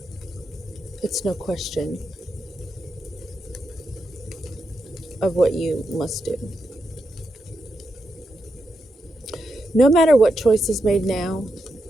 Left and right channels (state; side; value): normal; both; correlation 0.85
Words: it's no question of what you must do. No matter what choice is made now,